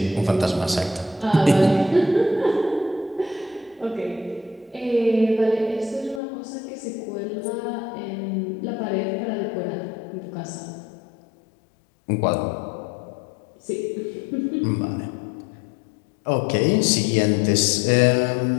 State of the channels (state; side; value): drops out; right; at 6.2 s